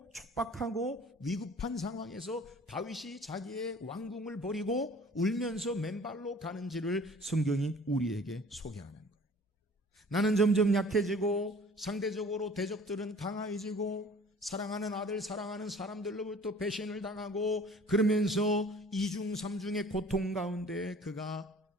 촉박하고 위급한 상황에서 다윗이 자기의 왕궁을 버리고 울면서 맨발로 가는지를 성경이 우리에게 소개하는 거예요. 나는 점점 약해지고 상대적으로 대적들은 강해지고 사랑하는 아들, 사랑하는 사람들로부터 배신을 당하고 그러면서 이중 삼중의 고통 가운데 그가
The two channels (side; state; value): both; normal; correlation 0.49